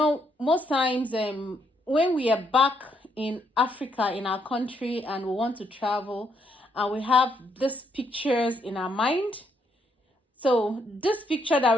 most times when we are back in Africa, in our country, and we want to travel, and we have these pictures in our mind. So this picture that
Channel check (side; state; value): both; normal; correlation 0.74